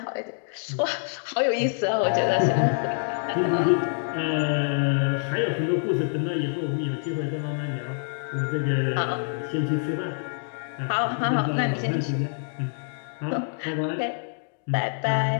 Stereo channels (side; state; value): right; silent; digital silence